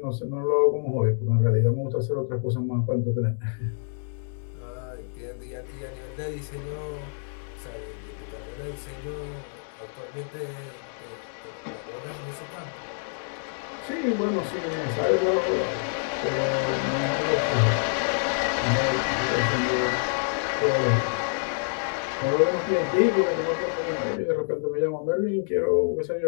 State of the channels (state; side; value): silent; right; digital silence